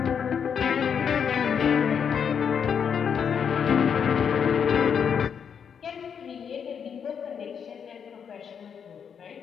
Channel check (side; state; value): right; quieter; 7.3 dB